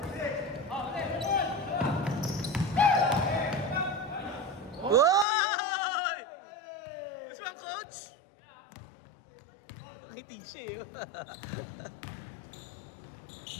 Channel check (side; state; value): right; drops out; at 5.2 s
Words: Woy! Gusto mo ang coach? Nakitig siya eh.